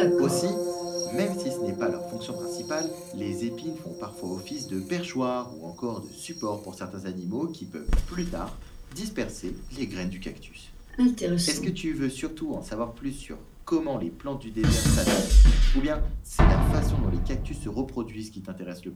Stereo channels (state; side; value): identical; both; correlation 1.00